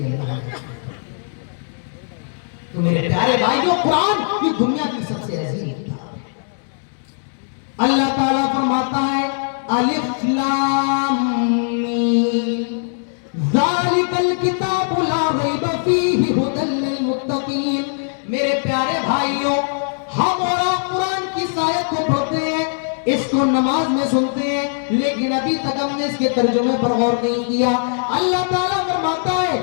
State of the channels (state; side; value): silent; right; 66 dB below the other